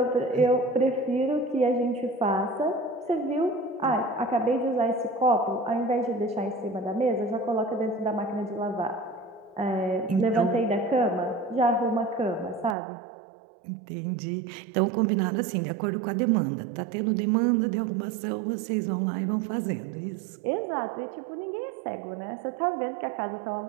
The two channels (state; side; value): drops out; left; at 12.8 s